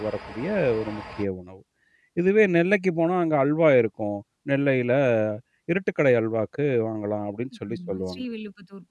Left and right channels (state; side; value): identical; both; correlation 1.00